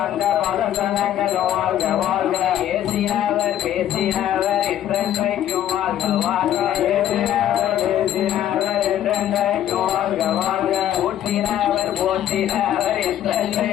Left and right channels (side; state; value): right; quieter; 11.4 dB